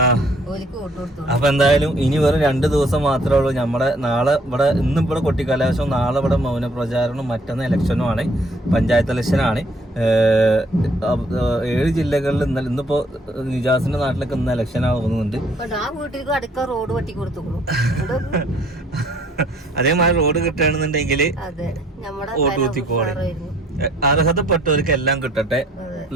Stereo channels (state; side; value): normal; both; correlation 0.62